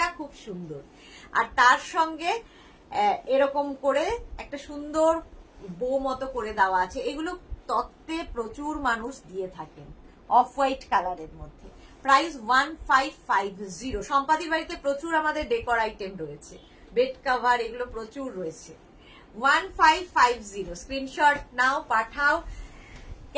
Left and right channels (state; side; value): identical; both; correlation 1.00